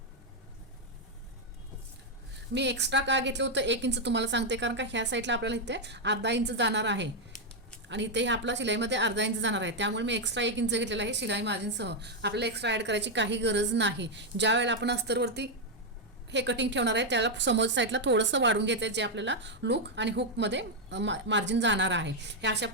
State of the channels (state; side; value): normal; both; correlation 0.01